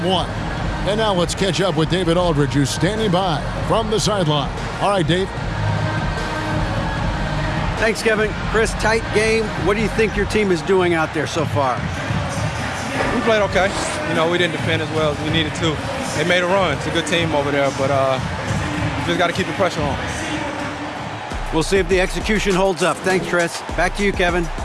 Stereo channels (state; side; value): identical; both; correlation 1.00